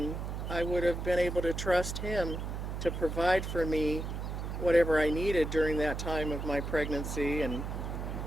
I would have been able to trust Him to provide for me whatever I needed during that time of my pregnancy and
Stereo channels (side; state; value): right; noise; hum, 4 dB below the sound